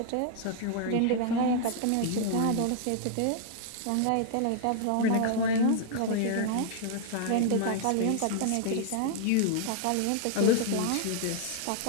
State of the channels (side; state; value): both; different; correlation 0.00